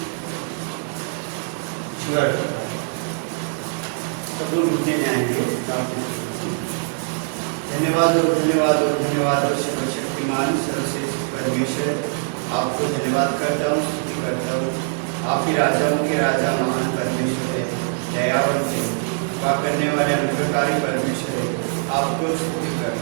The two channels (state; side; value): silent; left; 60 dB below the other